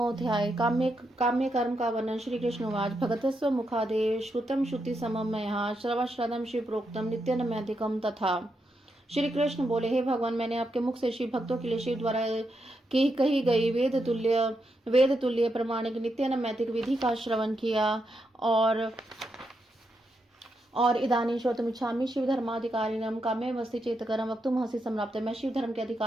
काम्य कर्म का वर्णन। श्री कृष्ण उवाच भगतस्व मुखादेव श्रुतम श्रुति समम मया श्रवश्रदम शिव प्रोक्तम नित्यनमैधिकम तथा। श्री कृष्ण बोले, हे भगवान, मैंने आपके मुख से शिव भक्तों के लिए शिव द्वारा की कही गई वेद तुल्य प्रमाणिक नित्य नैतिक विधि का श्रवण किया और इदानीं श्रोतुमिच्छामि शिव धर्माधिकारिणम काम्य वस्ति चेतकरम वक्तुमहसि सम्राप्त। मैं शिव धर्म के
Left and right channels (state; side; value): normal; both; correlation 0.83